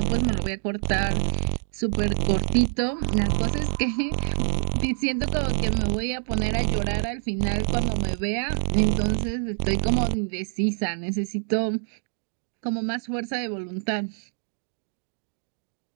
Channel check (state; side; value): silent; left; digital silence